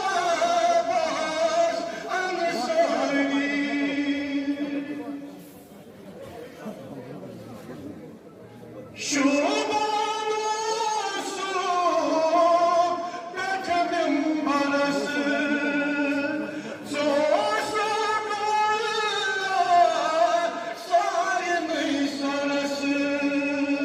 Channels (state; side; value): identical; both; correlation 1.00